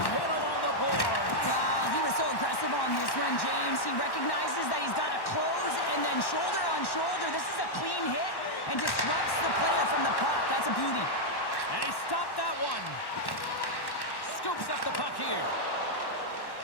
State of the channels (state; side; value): late; right; 1.1 ms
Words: hit along the boards. He was so aggressive on this one, James. He recognizes that he's got to close and then shoulder on shoulder. This is a clean hit and disrupts the player from the puck. That's a beauty. And he stopped that one. Scoops up the puck here.